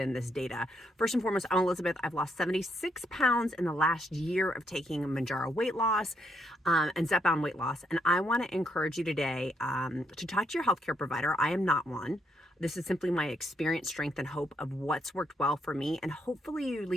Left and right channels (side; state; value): both; normal; correlation 0.76